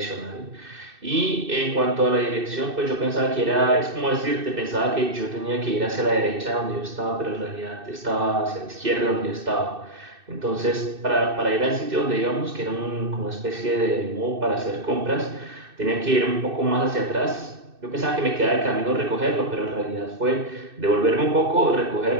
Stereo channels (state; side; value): late; left; 2.6 ms